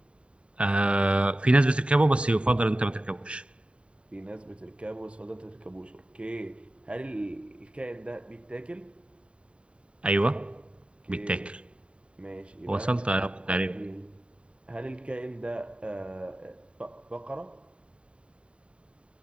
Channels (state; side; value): late; left; 0.058 ms